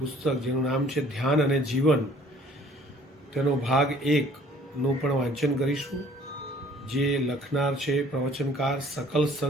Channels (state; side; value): normal; both; correlation 0.55